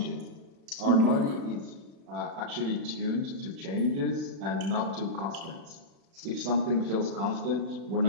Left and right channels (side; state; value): left; late; 36 ms